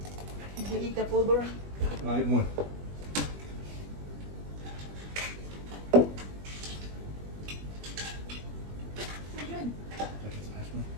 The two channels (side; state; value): left; late; 20 ms